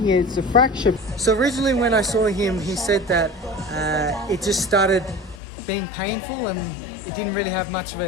it's a fracture. So originally when I saw him, he said that it just started being painful and it didn't really have much of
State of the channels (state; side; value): drops out; right; at 5.4 s